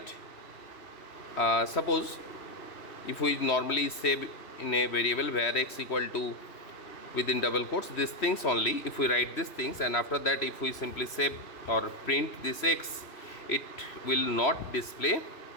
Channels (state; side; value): late; right; 2.9 ms